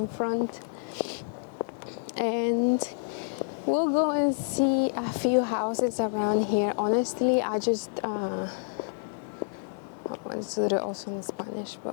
And we'll go and see a few houses around here. Honestly, I just let's do it also in Spanish,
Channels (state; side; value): silent; right; 59 dB below the other